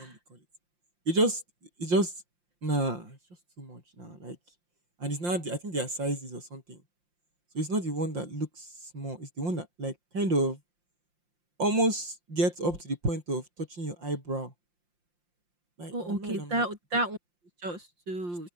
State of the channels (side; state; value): left; late; 5.7 ms